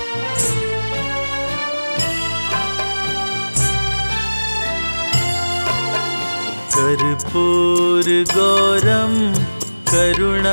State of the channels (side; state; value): both; inverted; correlation -1.00